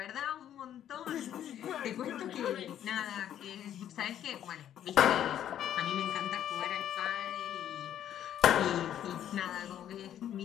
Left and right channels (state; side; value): quieter; right; 10.7 dB